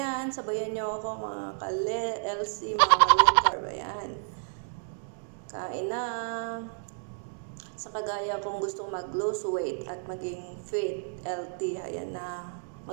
Sabayan nyo ako mga ka-LC, mga low carb. Ayan. Kain na. Sa kagaya kung gusto mag-lose weight at maging fit, healthy, ayan na.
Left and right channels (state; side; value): silent; left; digital silence